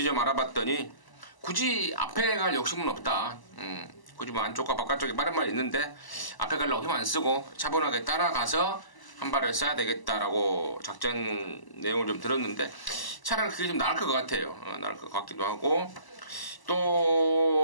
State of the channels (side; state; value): right; late; 1.0 ms